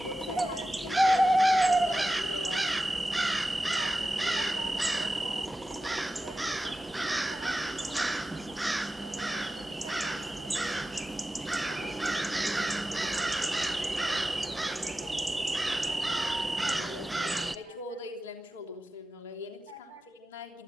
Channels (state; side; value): normal; both; correlation 0.93